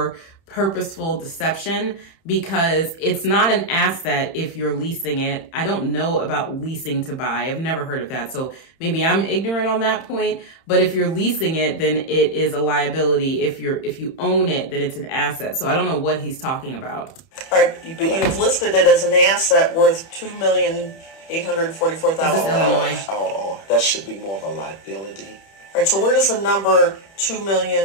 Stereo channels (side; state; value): right; late; 31 ms